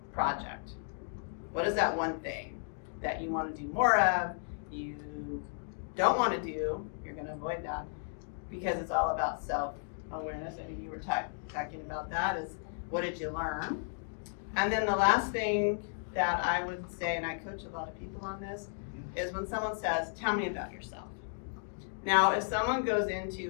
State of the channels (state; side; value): silent; right; digital silence